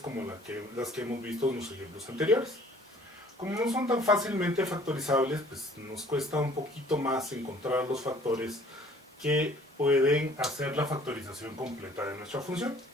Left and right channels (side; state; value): both; normal; correlation 0.55